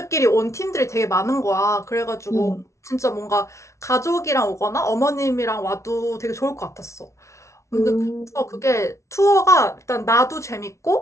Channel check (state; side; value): late; right; 0.14 ms